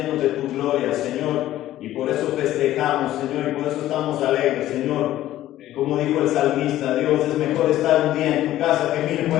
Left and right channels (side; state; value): right; quieter; 13.9 dB